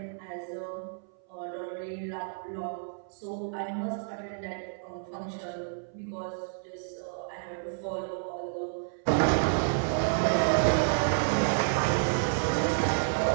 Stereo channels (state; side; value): silent; left; 58 dB below the other